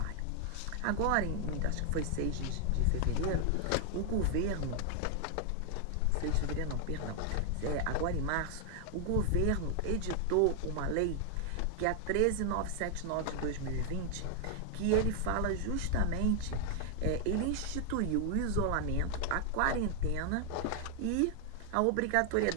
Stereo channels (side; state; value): both; different; correlation 0.00